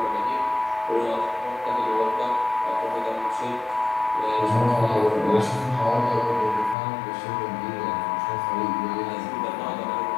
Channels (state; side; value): drops out; right; at 6.8 s